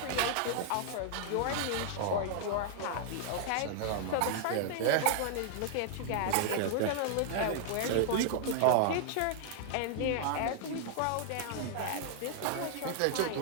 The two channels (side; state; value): both; different; correlation 0.00